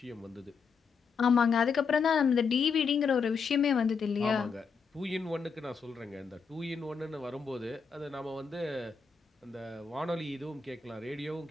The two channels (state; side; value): quieter; right; 5.5 dB